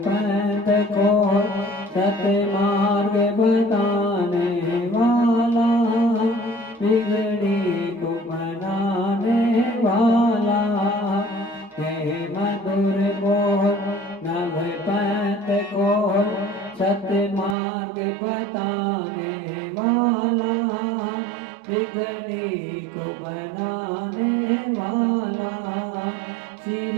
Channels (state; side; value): drops out; left; at 17.6 s